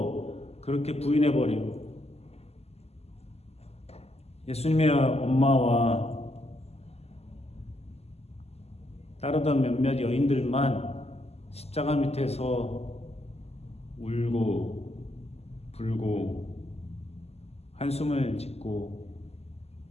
그렇게 부인해버리고 예수님의 엄마와 따르던 몇몇 여인들만 십자가 밑에서 울고 불고 한숨을 짓고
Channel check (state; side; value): late; right; 0.30 ms